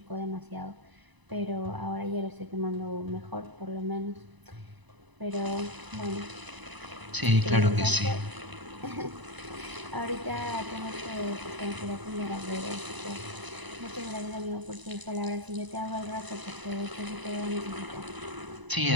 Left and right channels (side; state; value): left; late; 1.0 ms